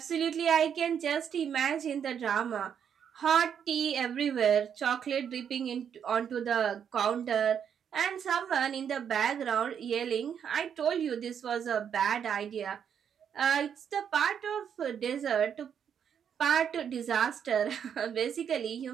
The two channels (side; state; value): left; quieter; 8.1 dB